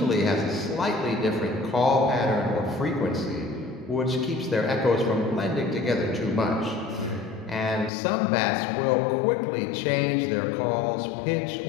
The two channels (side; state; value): right; drops out; at 7.9 s